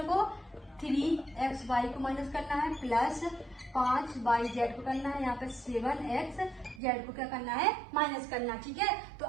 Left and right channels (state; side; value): drops out; left; at 6.8 s